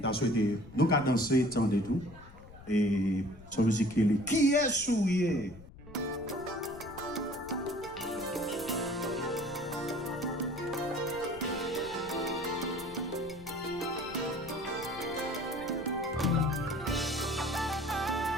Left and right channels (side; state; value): left; noise; rumble, 19 dB below the sound